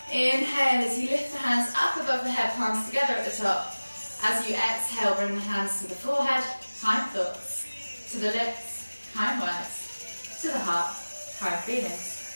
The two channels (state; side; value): inverted; both; correlation -1.00